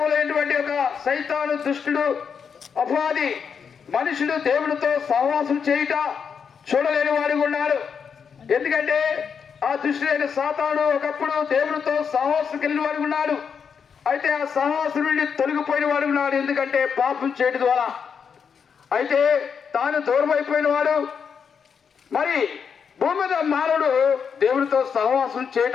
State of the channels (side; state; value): right; quieter; 6.6 dB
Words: ఒక సైతాను దుష్టుడు అపవాది మనుషుడు దేవుడితో సహవాసం చేయుట చూడలేని వాడు ఉన్నాడు. ఎందుకంటే ఆ దుష్టుడైన సాతాను ఒకప్పుడు దేవుడితో సహవాసం కలిగిన వాడు ఉన్నాడు. అయితే ఆ సహవాసం నుండి తొలగిపోయిన వాడు ఉన్నాడు. ఎందుకంటే పాపం చేయడం ద్వారా. అయితే తాను దూరం అయిపోయిన వాడు. మరి భూమి మీద మానవుడు దేవుడితో సహవాసం